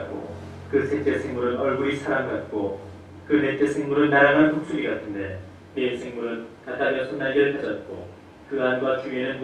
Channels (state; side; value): identical; both; correlation 1.00